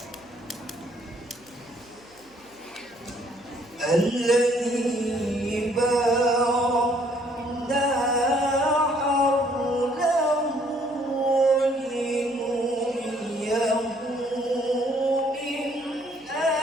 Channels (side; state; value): left; noise; hum, 28 dB below the sound